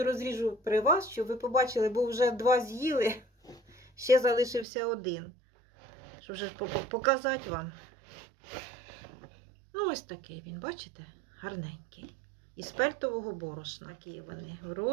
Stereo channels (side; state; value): left; drops out; at 4.7 s